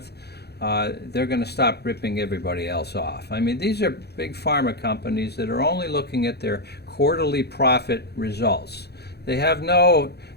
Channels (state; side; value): late; right; 0.48 ms